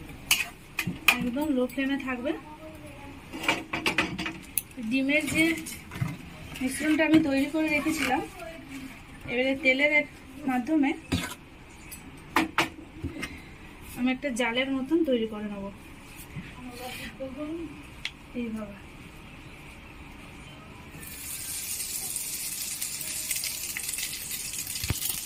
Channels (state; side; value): identical; both; correlation 1.00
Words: একদম লো ফ্লেমে থাকবে। ডিমের যে মিশ্রণটা আমি তৈরি করে রেখেছিলাম, এবারে তেলের মাধ্যমে আমি একটা জালের মতন তৈরি করে নেব। এইভাবে